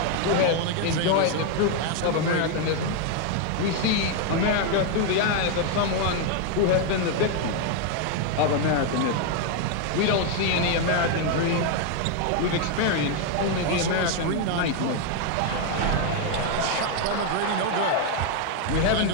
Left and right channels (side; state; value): both; different; correlation 0.01